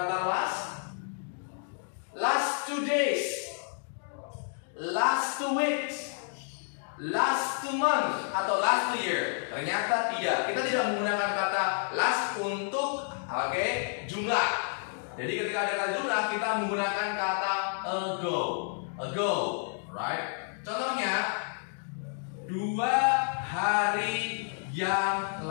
last? last 2 weeks, last 2 months, atau last 2 year. Ternyata tidak. Kita tidak menggunakan kata last untuk jumlah. Jadi ketika ada kata jumlah, kita menggunakan kata ago. Ago, right? Contohnya 2 hari yang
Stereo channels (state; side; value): silent; right; 58 dB below the other